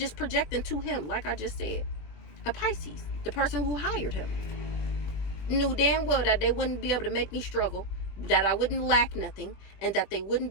projecting to him, like I just said. A Pisces, the person who hired him, knew damn well that they wouldn't be able to make me struggle, that I wouldn't lack nothing, and that they wouldn't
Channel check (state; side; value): late; right; 20 ms